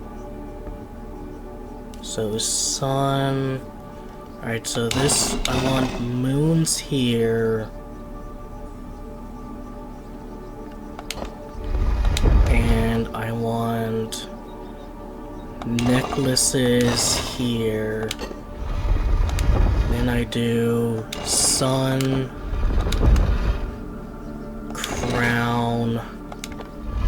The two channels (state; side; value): identical; both; correlation 1.00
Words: So sun. Alright, so this, I want moons here. And I want necklaces here. Then I do sun, crown,